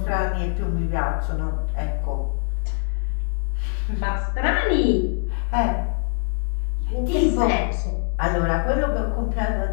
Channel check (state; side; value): silent; right; 63 dB below the other